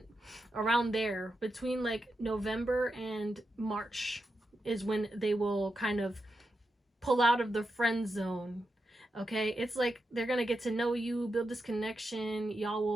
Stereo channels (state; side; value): normal; both; correlation 0.87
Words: around there, between like November and March is when they will kind of pull out of the friend zone. Okay, it's like they're gonna get to know you, build this connection, y'all